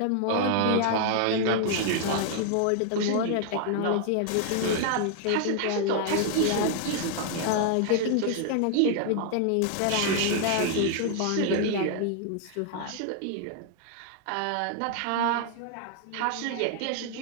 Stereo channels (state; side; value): different; both; correlation 0.00